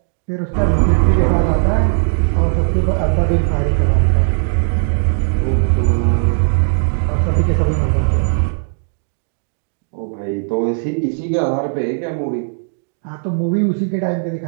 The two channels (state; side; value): silent; left; digital silence